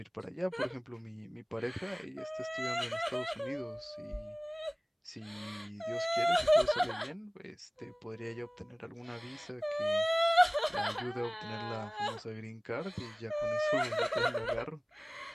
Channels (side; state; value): both; identical; correlation 1.00